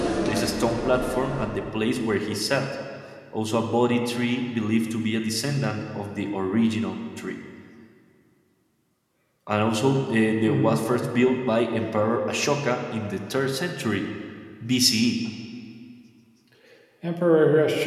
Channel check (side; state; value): both; identical; correlation 1.00